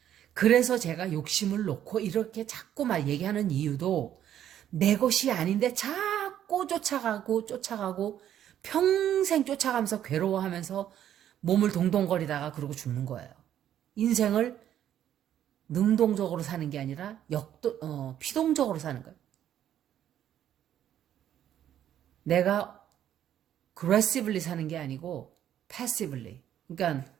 그래서 제가 욕심을 놓고 이렇게 자꾸 막 얘기하는 이유도 내 것이 아닌데 자꾸 쫓아가고 평생 쫓아가면서 괴로워하면서 몸을 동동거리다가 그러고 죽는 거예요. 인생을 능동적으로 사는 게 아니라 피동적으로 사는 거예요. 내가 aggressively 사는 게 아니고 passively. 그러니까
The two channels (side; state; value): left; quieter; 10.7 dB